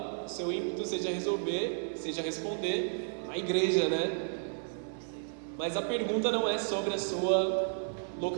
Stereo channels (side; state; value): left; silent; 56 dB below the other